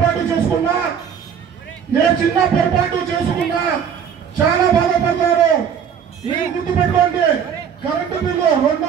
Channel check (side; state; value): left; quieter; 7.8 dB